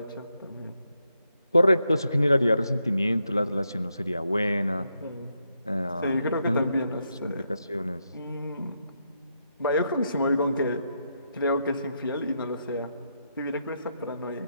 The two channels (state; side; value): inverted; both; correlation -0.82